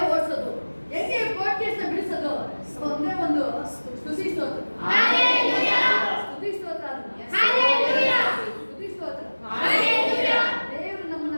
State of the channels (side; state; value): both; inverted; correlation -1.00